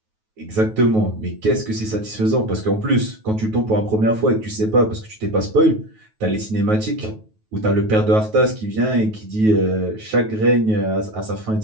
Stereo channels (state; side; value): late; left; 9.3 ms